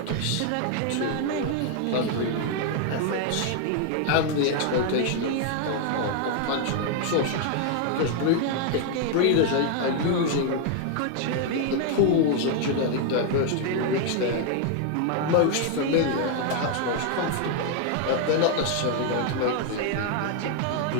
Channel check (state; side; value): different; both; correlation 0.00